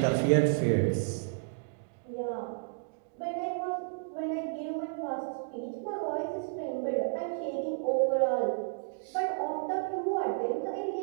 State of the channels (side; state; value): left; silent; digital silence